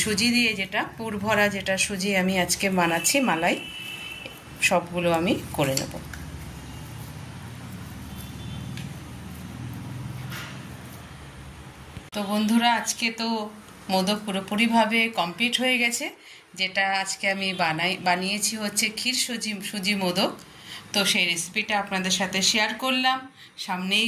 সুজি দিয়ে যেটা পুর ভরা যেটা সুজি আমি আজকে বানাচ্ছি মালাই, সবগুলো আমি করে নেব। তো বন্ধুরা, আজকে তো মোদক পুরোপুরিভাবে কমপ্লিট হয়ে গেছে। যেটা আজকে আমি বানিয়েছি হচ্ছে ক্ষীর সুজি মোদক। তো সেই রেসিপিটা আপনাদের সাথে শেয়ার করলাম। সামনেই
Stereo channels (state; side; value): identical; both; correlation 1.00